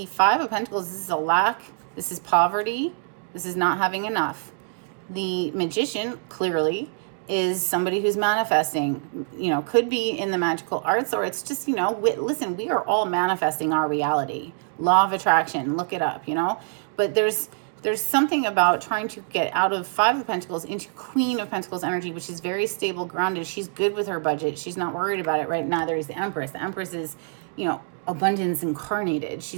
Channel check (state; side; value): silent; left; digital silence